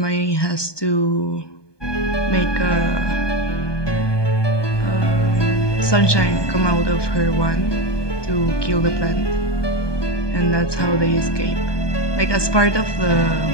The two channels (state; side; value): late; right; 1.2 ms